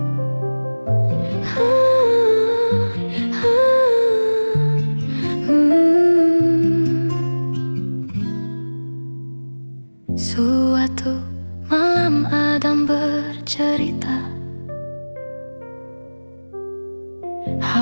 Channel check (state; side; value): inverted; both; correlation -1.00